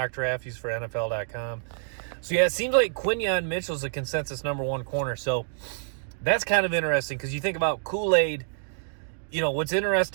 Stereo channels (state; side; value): silent; left; digital silence